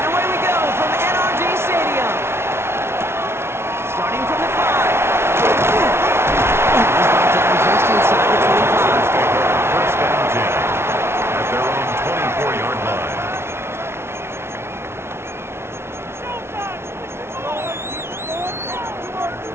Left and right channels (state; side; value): late; left; 0.12 ms